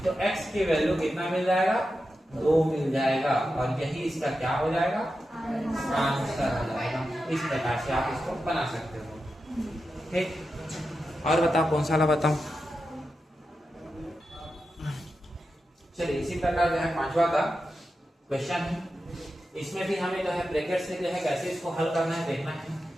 तो x की वैल्यू कितना मिल जाएगा, 2 मिल जाएगा, और यही इसका क्या हो जाएगा, आंसर हो जाएगा। इस प्रकार से आप इसको बना सकते हो। ठीक, और बताओ कौन सा वाला बताऊं। चलिए, इसी प्रकार जो है 5वां का क्वेश्चन है, इसमें भी हमें जो है ब्रैकेट से जो है कैसे इसको हल करना है देखना है।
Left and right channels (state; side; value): normal; both; correlation 0.90